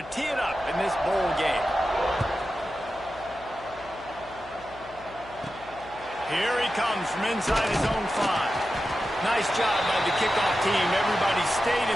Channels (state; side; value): noise; left; hum, 21 dB below the sound